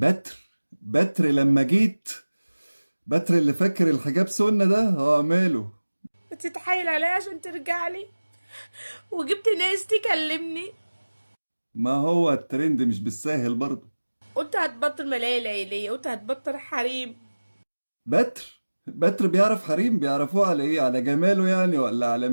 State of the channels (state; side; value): inverted; both; correlation -1.00